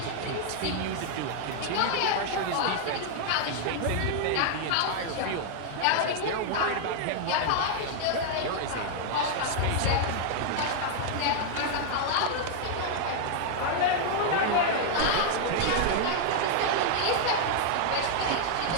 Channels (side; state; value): both; different; correlation 0.00